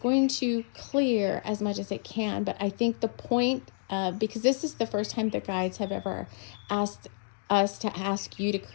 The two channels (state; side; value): silent; right; digital silence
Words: to clear as much as it can. But I think the point because this is the first time the guides have ever asked us to ask you to